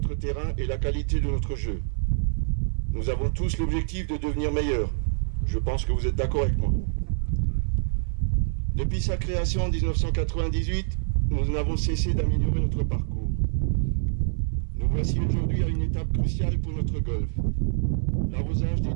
terrain et la qualité de notre jeu. Nous avons tous l'objectif de devenir meilleurs. Je pense que vous êtes d'accord avec moi. Depuis sa création en 1998, nous n'avons cessé d'améliorer notre parcours. Nous voici aujourd'hui à une étape cruciale pour notre golf, l'arrosage des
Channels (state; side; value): silent; left; 61 dB below the other